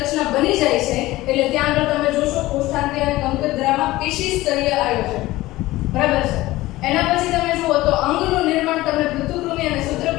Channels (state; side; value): quieter; right; 17.8 dB